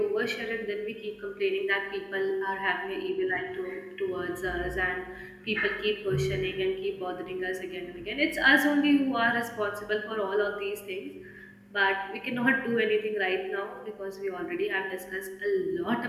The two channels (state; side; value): identical; both; correlation 1.00